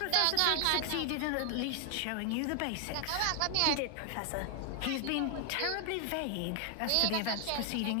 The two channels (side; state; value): both; different; correlation 0.00